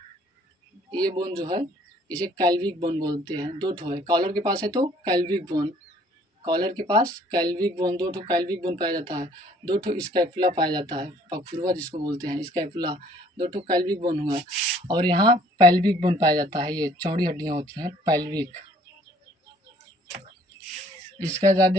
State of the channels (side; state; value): both; normal; correlation 0.58